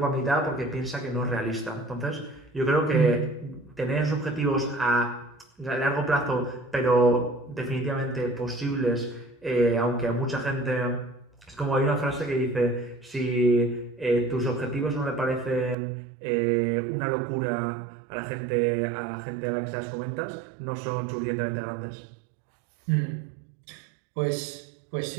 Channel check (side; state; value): left; drops out; at 15.8 s